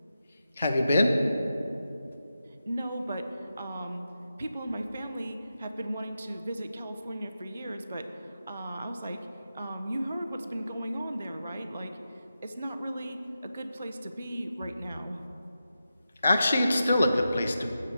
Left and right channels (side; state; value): both; inverted; correlation -0.90